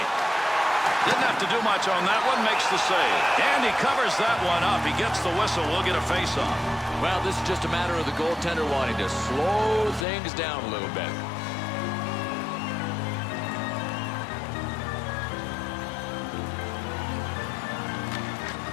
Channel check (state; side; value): drops out; right; at 10.1 s